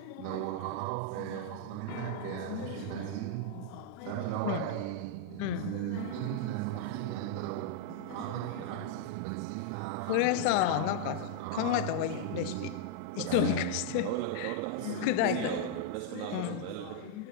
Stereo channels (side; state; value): both; different; correlation -0.01